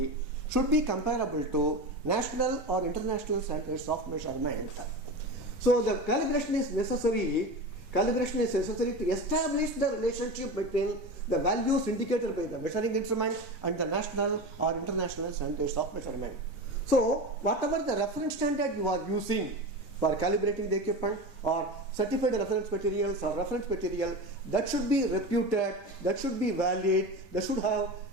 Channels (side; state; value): both; normal; correlation 0.26